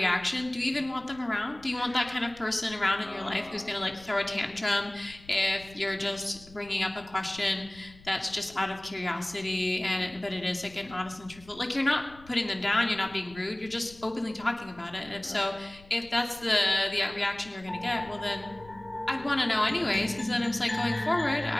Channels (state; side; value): noise; left; rumble, 22 dB below the sound